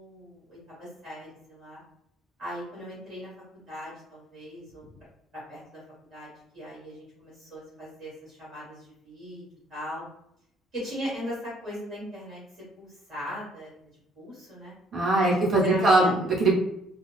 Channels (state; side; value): normal; both; correlation 0.64